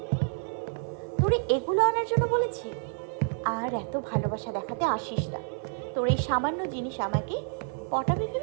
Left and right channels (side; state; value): left; silent; 59 dB below the other